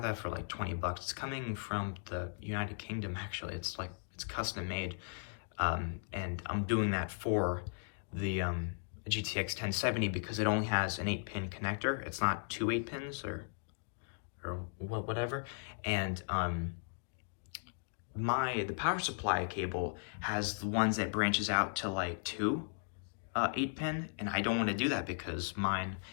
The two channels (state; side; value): silent; right; digital silence